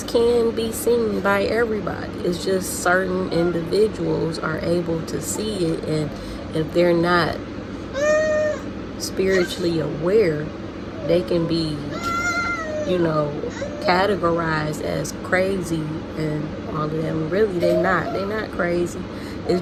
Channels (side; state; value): both; identical; correlation 1.00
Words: can be seen by everybody. It's just certain individuals are able to see it, and if they're not spiritually aware, they can be, categorized as crazy and all of them. Really, they're not. They're not crazy.